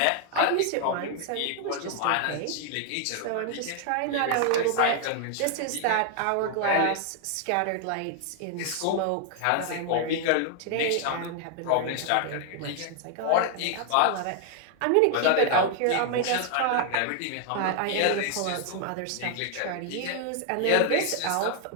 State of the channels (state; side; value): different; both; correlation 0.00